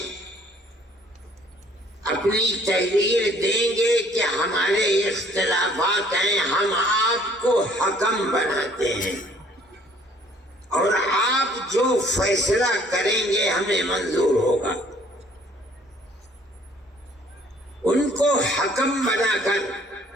اپنی تحریر دیں گے کہ ہمارے اختلافات ہیں، ہم آپ کو حکم بناتے ہیں اور آپ جو فیصلہ کریں گے ہمیں منظور ہوگا، ان کو حکم بنا کر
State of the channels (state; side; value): normal; both; correlation 0.59